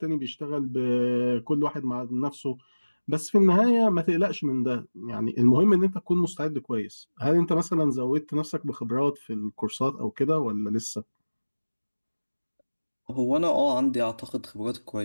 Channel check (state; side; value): inverted; both; correlation -1.00